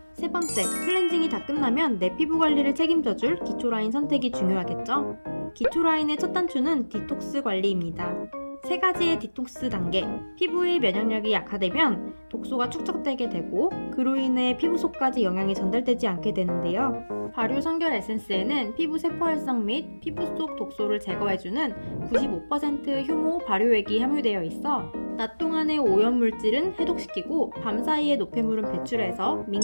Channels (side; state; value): both; inverted; correlation -1.00